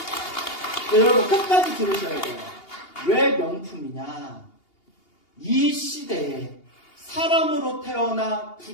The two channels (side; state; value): right; late; 2.8 ms